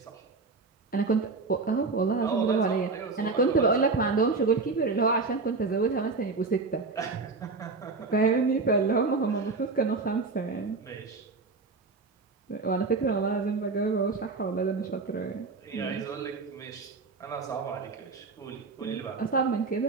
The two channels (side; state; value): left; quieter; 4.1 dB